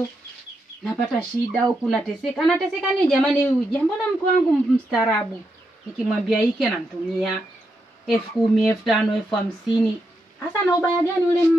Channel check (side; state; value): both; normal; correlation 0.83